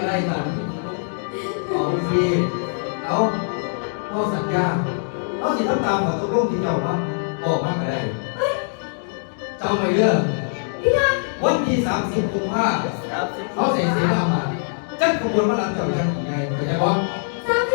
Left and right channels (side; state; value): right; silent; digital silence